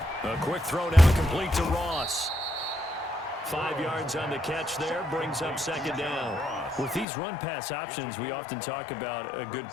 A quick throw down complete to Ross. 5 yards on the catch there, brings up 2nd down. With these run-pass options, we often talk about a good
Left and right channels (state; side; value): drops out; right; at 7.1 s